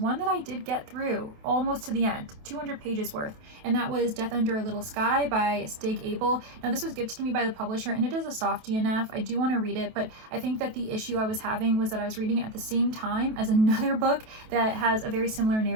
that I did get through almost to the end, 200 pages worth, and that was Death Under a Little Sky by Stig Abell. Now, this was gifted to me by the publisher, and it is a soft DNF. I do want to read it, but I think that the issue I was having was that I was reading it at the same time as another book that has a very similar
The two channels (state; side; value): late; left; 28 ms